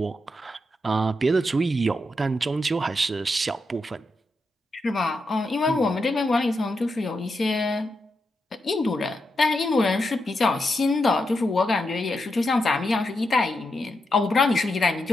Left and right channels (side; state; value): both; normal; correlation 0.85